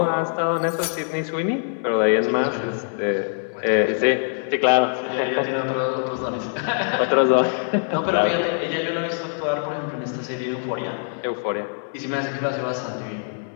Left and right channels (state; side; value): silent; right; 63 dB below the other